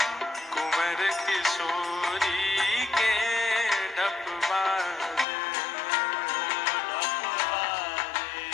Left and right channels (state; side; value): drops out; right; at 5.2 s